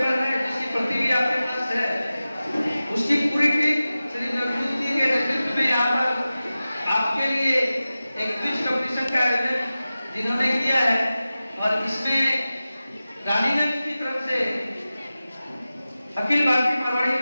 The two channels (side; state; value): both; inverted; correlation -0.95